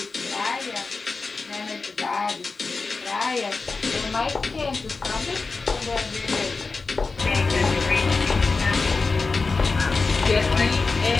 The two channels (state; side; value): quieter; right; 4.2 dB